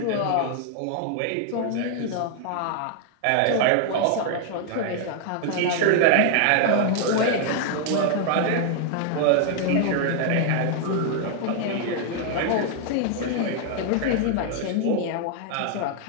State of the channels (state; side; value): different; both; correlation 0.00